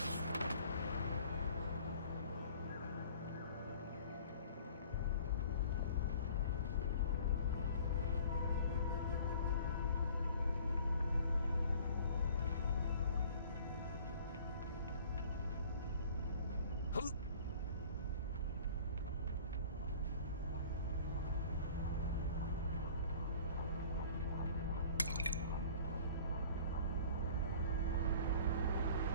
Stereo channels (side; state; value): both; inverted; correlation -0.48